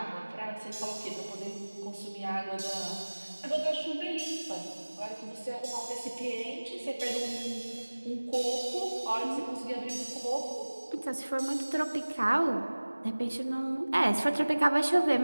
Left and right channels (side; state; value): both; inverted; correlation -1.00